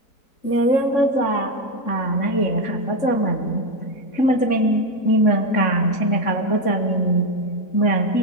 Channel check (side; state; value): right; late; 3.6 ms